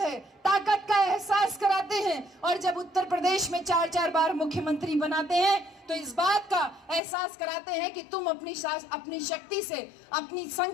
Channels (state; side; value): drops out; right; at 7.0 s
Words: ताकत का एहसास कराते हैं। और जब उत्तर प्रदेश में 4-4 बार मुख्यमंत्री बनाते हैं तो इस बात का एहसास कराते हैं कि तुम अपनी शक्ति से, अपनी